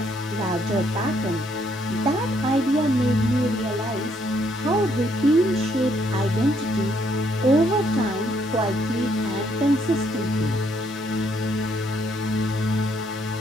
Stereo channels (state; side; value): normal; both; correlation 0.70